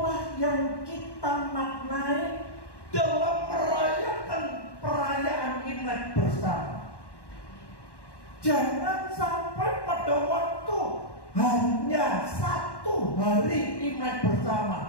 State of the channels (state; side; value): late; right; 1.1 ms